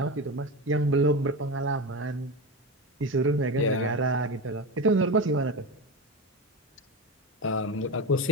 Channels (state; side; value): normal; both; correlation 0.21